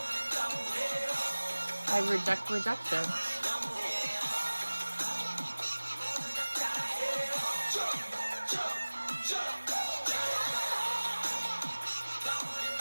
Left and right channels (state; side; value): inverted; both; correlation -1.00